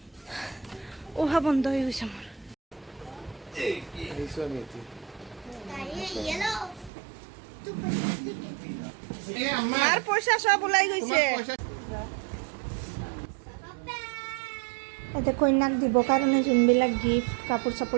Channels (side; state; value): left; drops out; at 6.9 s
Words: অহা বন্ধ হৈ গৈছে মোৰ মাৰ পইচা সব ওলাই গৈছে এতে কইনাক দিব কাৰণে যোনবিলাক গিফ্ট কাপোৰ